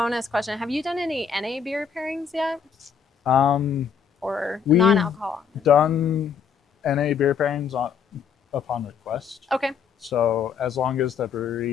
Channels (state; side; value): quieter; right; 6.8 dB